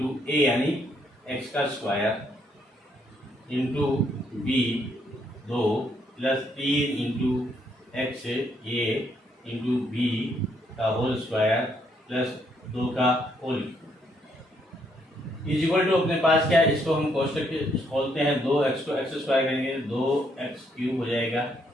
a यानी x का square into B 2 plus 3 into X A into B का होल स्क्वायर प्लस 2 का होल, इज इक्वल टू अपने पास क्या है, इसको हम कोष्टक खोलते हैं, 2x को x स्क्वायर करेंगे 2x क्यूब हो जाएगा,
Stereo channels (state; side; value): normal; both; correlation 0.72